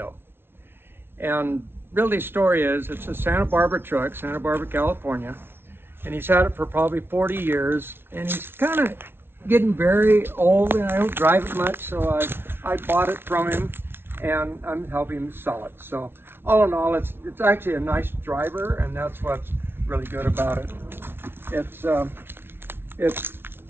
And really, the story is, it's a Santa Barbara truck, Santa Barbara, California. And he's had it for probably 40 years. And he's kind of getting very old, and I don't drive it much, so I bought it from him, and I'm helping him sell it. So all in all, it's actually a nice driver, and that's what's really good about it.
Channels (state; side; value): late; left; 0.11 ms